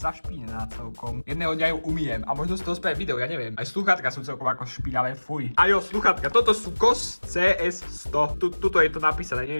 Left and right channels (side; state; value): both; inverted; correlation -1.00